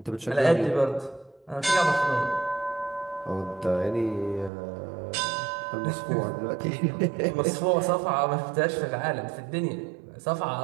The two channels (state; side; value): drops out; left; at 4.5 s